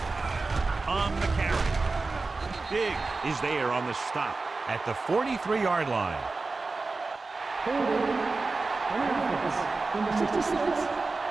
On the carry. Big is there on the stop at the 43-yard line. Number 66.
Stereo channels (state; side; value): quieter; left; 3.8 dB